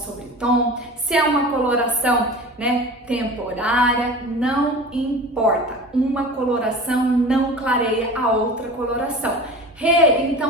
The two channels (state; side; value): normal; both; correlation 0.36